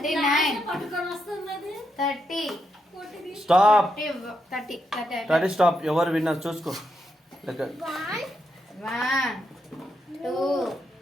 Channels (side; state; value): both; normal; correlation 0.82